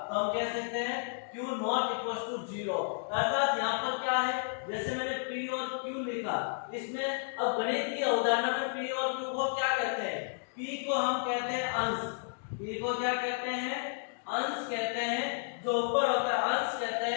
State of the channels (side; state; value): right; silent; digital silence